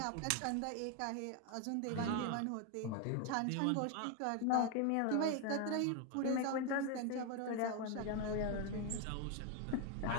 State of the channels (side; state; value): both; different; correlation 0.01